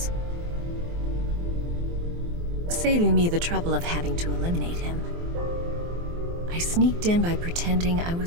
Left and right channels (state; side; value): late; left; 23 ms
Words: saving me the trouble of having to eliminate him. I sneaked in by pretending I